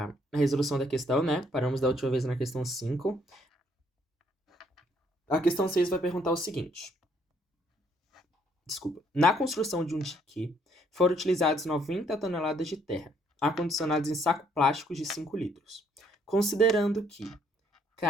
resolução da questão, né? Paramos da última vez na questão 5. A questão 6 vai perguntar o seguinte. Desculpa. Na construção de um dique, foram utilizados 90 toneladas de terra, acondicionados em saco plástico de 5 litros. Considerando que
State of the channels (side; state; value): both; normal; correlation 0.68